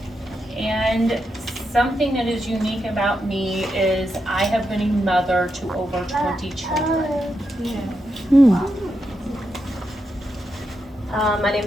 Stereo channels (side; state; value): both; normal; correlation 0.85